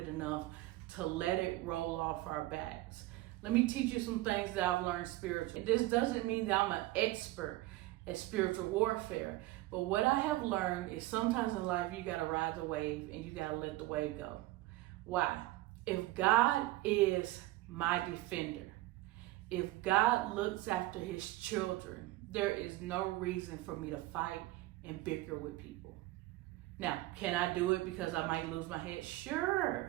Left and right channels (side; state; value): left; quieter; 18.0 dB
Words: enough to let it roll off our backs. Let me teach you some things that I've learned spiritually. This doesn't mean that I'm an expert at spiritual warfare, but what I have learned is sometimes in life you gotta ride the wave and you gotta let the wave go. Why? If God is my defender, if God looks after his children, there is no reason for me to fight and bicker with people. Now, can I do it because I might lose my head?